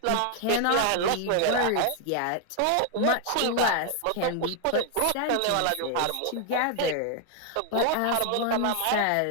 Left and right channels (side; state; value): both; different; correlation 0.00